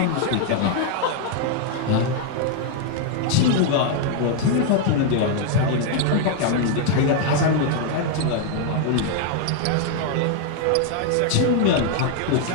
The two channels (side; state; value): both; different; correlation 0.00